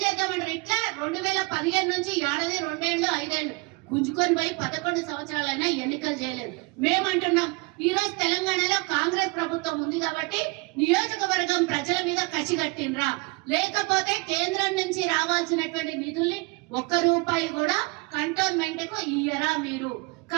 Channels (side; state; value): left; quieter; 26.7 dB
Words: చేద్దామంటారు? ఇట్లా 2015 నుంచి 2 ఏళ్ళు 5 ఏళ్ళు గుంజుకొని పోయి 11 సంవత్సరాలైనా ఎన్నికలు చేయలేదు. మేమంటున్నాం ఈ రోజు తెలంగాణలో కాంగ్రెస్ ప్రభుత్వం ఉంది కాబట్టి నియోజకవర్గం ప్రజల మీద కసి కట్టినరా, లేకపోతే కేంద్రం నుంచి రావాల్సినటువంటి నిధుల్ని 1 రూపాయి కూడా కంటోన్మెంట్ కు ఇయ్యరా మీరు?